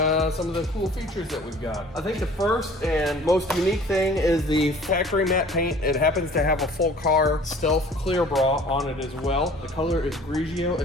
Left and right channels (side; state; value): both; normal; correlation 0.49